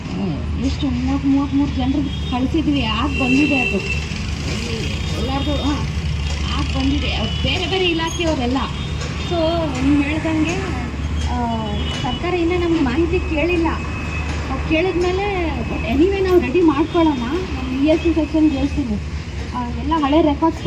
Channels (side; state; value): both; identical; correlation 1.00